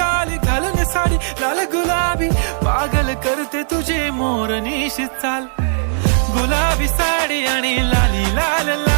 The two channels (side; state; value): left; silent; digital silence